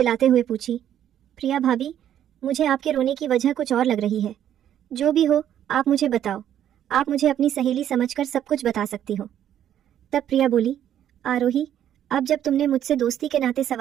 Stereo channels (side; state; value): left; quieter; 10.6 dB